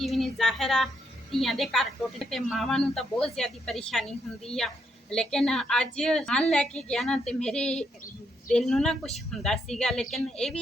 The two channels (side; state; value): both; normal; correlation 0.77